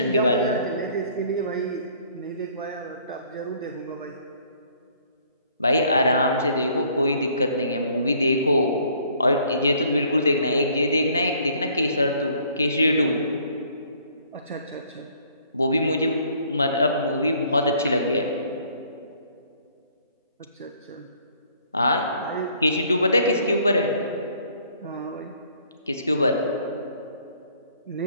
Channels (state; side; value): inverted; both; correlation -0.60